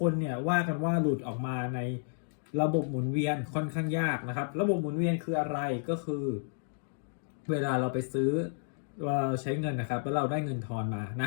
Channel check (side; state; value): right; silent; digital silence